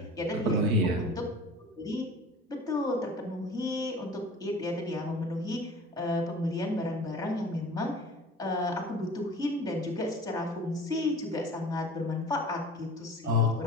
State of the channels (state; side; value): normal; both; correlation 0.42